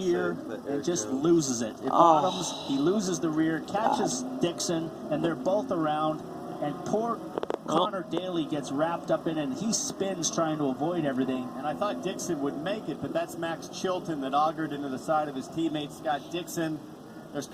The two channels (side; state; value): both; identical; correlation 1.00